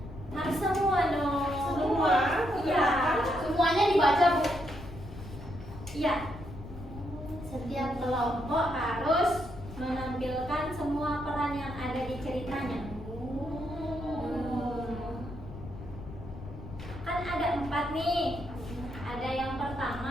Harus semua dong. Semua? Iya. Semuanya dibaca, Bu. Iya. Setiap kelompok harus menampilkan semua peran yang ada di ceritanya. Kan ada 4 nih. Ada yang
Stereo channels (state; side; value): noise; left; rumble, 12 dB below the sound